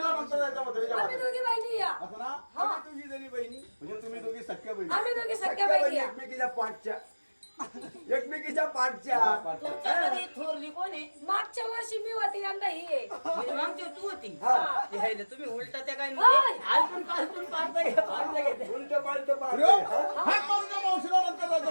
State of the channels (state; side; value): inverted; both; correlation -1.00